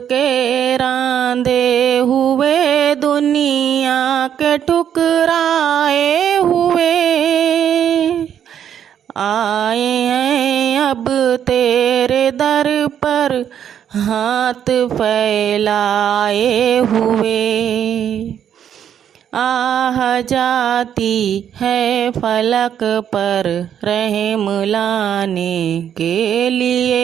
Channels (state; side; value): quieter; left; 9.3 dB